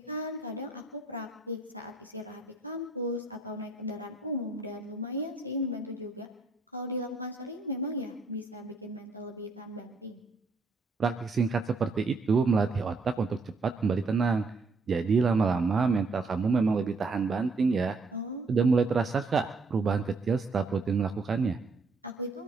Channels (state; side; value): quieter; left; 3.8 dB